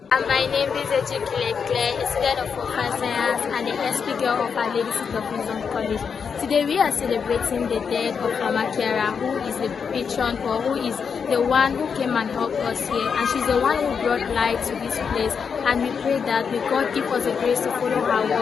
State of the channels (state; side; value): quieter; right; 6.3 dB